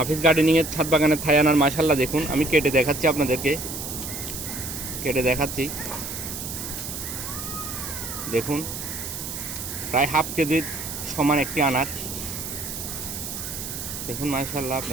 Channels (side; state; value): right; noise; hiss, 7 dB below the sound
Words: গার্ডেনিংয়ের ছাদ বাগানের থাই আনার মাশাআল্লাহ দেখুন, আমি কেটে দেখাচ্ছি আপনাদেরকে, কেটে দেখাচ্ছি। দেখুন প্রায় হাফ কেজির সমান একটি আনার। দেখুন মাশাআল্লাহ